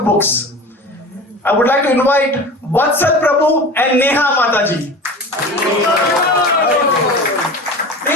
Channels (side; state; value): both; normal; correlation 0.35